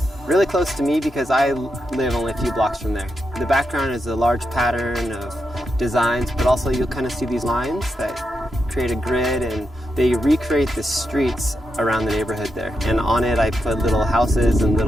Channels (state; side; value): normal; both; correlation 0.85